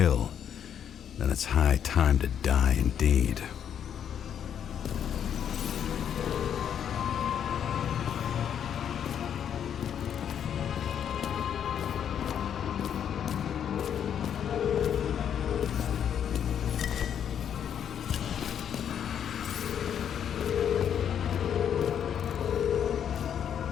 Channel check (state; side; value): quieter; right; 8.8 dB